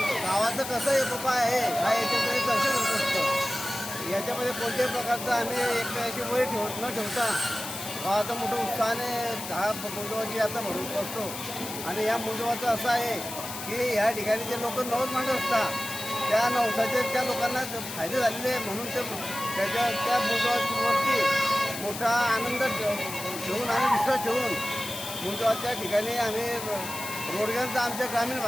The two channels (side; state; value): left; noise; hiss, 8 dB below the sound